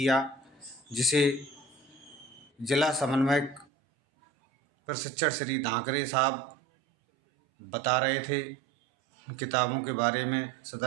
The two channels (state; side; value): drops out; left; at 3.7 s